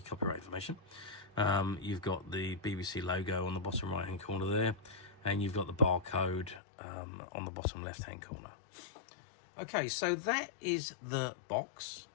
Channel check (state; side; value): drops out; right; at 6.6 s